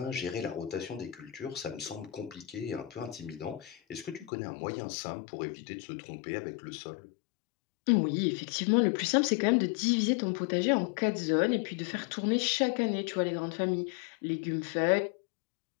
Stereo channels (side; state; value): right; drops out; at 4.3 s